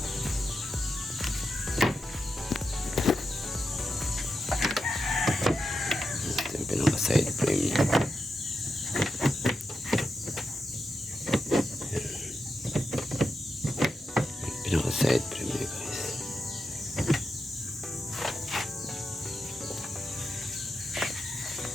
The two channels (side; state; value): both; normal; correlation 0.88